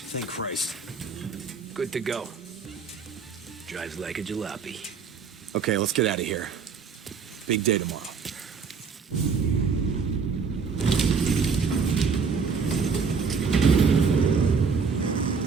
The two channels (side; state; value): left; quieter; 5.5 dB